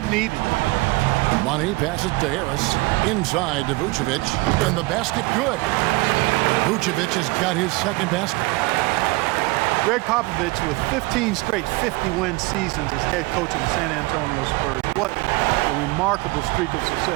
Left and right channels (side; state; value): left; quieter; 23.1 dB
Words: needed it. Money passes to Harris. Inside to Vucevic. And the basket good. Vucevic has got his second basket. Greg Popovich with 15 straight 50-win seasons as head coach of the San Antonio Spurs. What a remarkable streak of